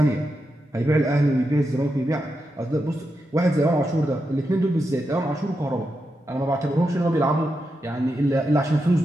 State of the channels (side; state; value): both; normal; correlation 0.87